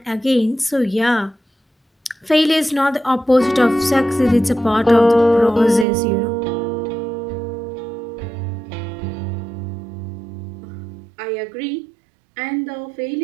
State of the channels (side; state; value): left; drops out; at 5.9 s